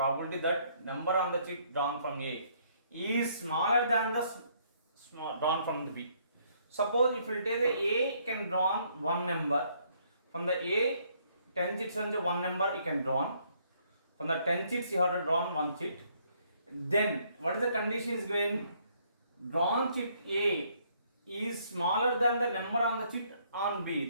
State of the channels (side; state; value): both; inverted; correlation -0.67